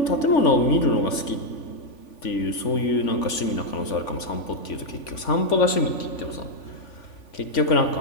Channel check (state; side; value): late; right; 3.5 ms